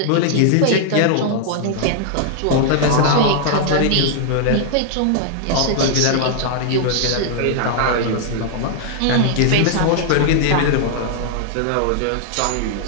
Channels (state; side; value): different; both; correlation -0.01